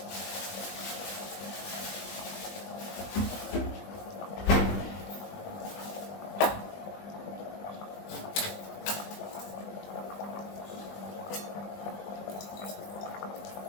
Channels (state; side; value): late; right; 20 ms